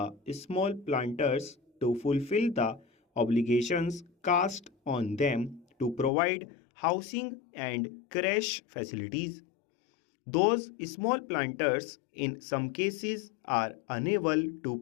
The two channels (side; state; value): right; drops out; at 6.1 s